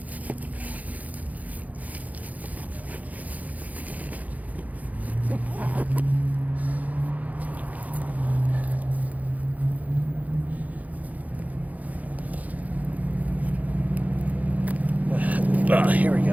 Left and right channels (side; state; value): left; late; 0.076 ms